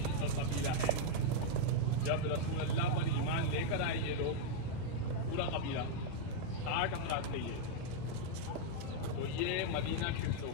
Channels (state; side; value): different; both; correlation -0.01